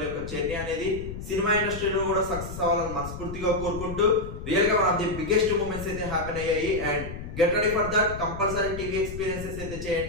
యొక్క జర్నీ అనేది సినిమా ఇండస్ట్రీలో కూడా సక్సెస్ అవ్వాలని మనస్ఫూర్తిగా కోరుకుంటూ, రియల్ గా one of the biggest moments అయితే హ్యాపెన్ అయ్యాయి. And get ready for that. Compulsory TV experiences అయితే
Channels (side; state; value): left; noise; rumble, 9 dB below the sound